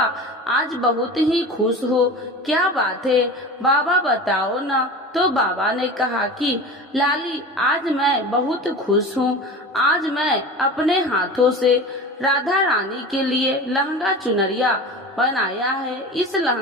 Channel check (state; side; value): normal; both; correlation 0.32